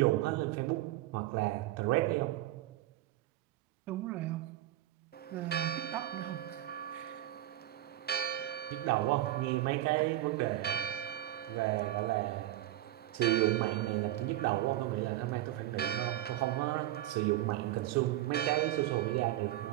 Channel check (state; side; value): quieter; left; 14.6 dB